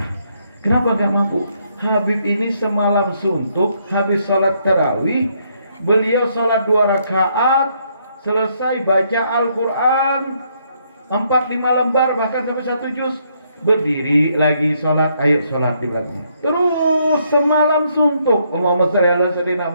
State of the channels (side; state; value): both; inverted; correlation -0.72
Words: Kenapa gak mampu? Habib ini semalam suntuk, habis sholat tarawih, beliau sholat 2 rakaat, selesai baca Al-Quran 4-5 lembar, bahkan sampai 1 juz, berdiri lagi sholat, ayo sholat di belakangnya. Terus semalam suntuk. Allahumma shalli ala sayyidina